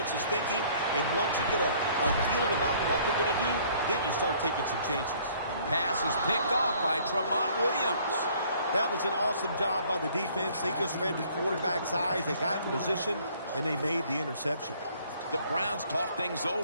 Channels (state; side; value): inverted; both; correlation -0.58